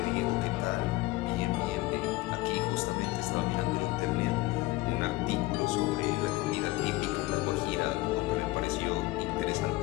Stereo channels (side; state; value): right; quieter; 19.8 dB